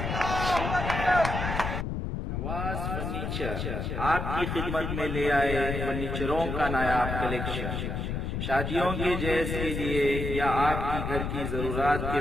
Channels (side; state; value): left; noise; rumble, 3 dB below the sound